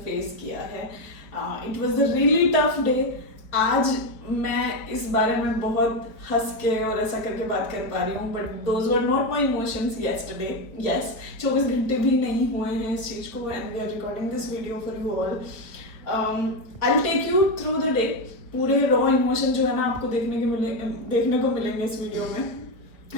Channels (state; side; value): late; right; 4.3 ms